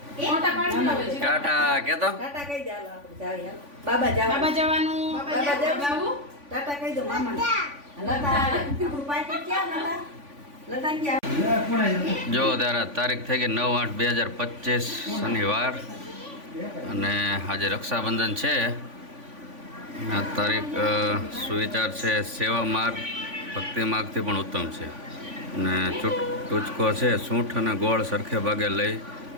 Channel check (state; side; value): late; left; 3.5 ms